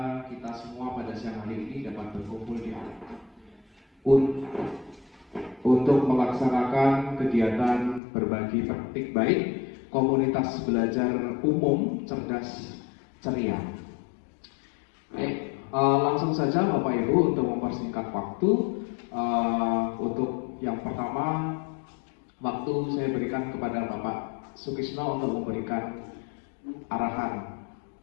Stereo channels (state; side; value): drops out; right; at 8.0 s